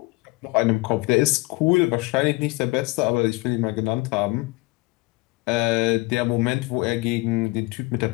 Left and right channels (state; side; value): quieter; right; 24.1 dB